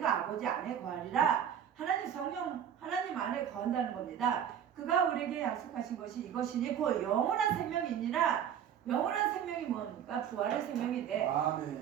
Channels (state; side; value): quieter; left; 9.0 dB